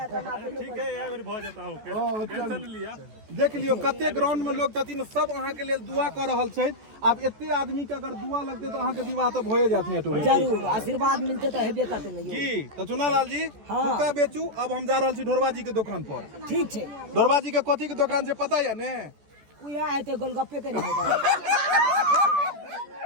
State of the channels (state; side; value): late; left; 14 ms